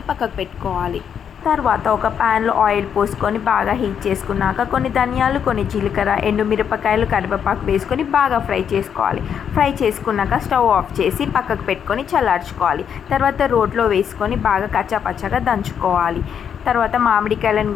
పక్కకు పెట్టుకోవాలి. తర్వాత ఒక ప్యాన్లో ఆయిల్ పోసుకొని బాగా హీట్ చేసుకున్నాక కొన్ని ధనియాలు, కొన్ని జీలకర్ర, ఎండుమిరపకాయలు, కరివేపాకు వేసుకొని బాగా ఫ్రై చేసుకోవాలి. ఫ్రై చేసుకున్నాక స్టవ్ ఆఫ్ చేసి పక్కకు పెట్టుకొని చల్లార్చుకోవాలి. తర్వాత రోట్లో వేసుకొని బాగా కచ్చాపచ్చగా దంచుకోవాలి. తర్వాత మామిడికాయలను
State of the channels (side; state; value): right; quieter; 8.0 dB